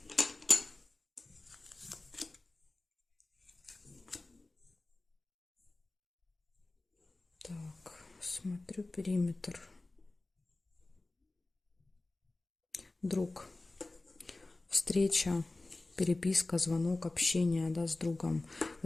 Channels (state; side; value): quieter; right; 3.0 dB